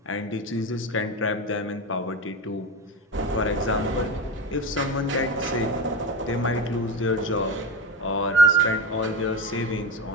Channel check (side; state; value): both; normal; correlation 0.22